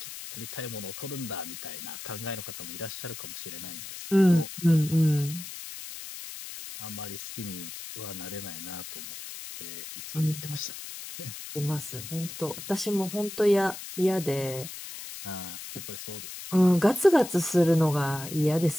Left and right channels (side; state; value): left; noise; hiss, 10 dB below the sound